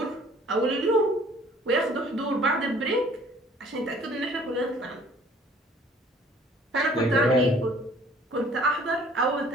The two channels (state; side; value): normal; both; correlation 0.54